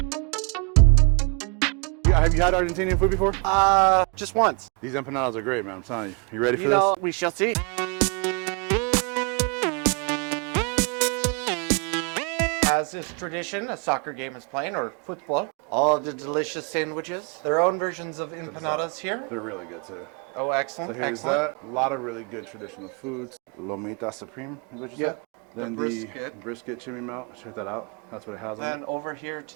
Have you had Argentinian food before? Just once. These empanadas are great, man, I'm telling you. You ready for this? We shall see. As is tradition, a soccer game is playing, or football. All the delicious sandwiches. Their own versions of empanadas here. They're really good too. Oh, excellent. So here's excellent. that. A lot of really good traditional foods. LOMITA Supreme is what you said? Then the brisket chimney melt. Check that out. That's what it has on it. Then over here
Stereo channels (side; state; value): left; quieter; 34.8 dB